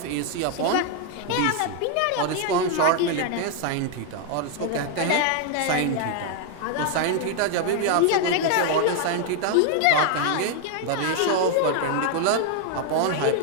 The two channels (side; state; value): both; different; correlation 0.00